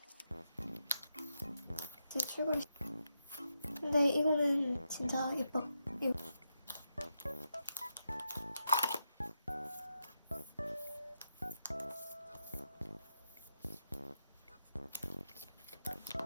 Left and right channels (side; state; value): both; inverted; correlation -0.84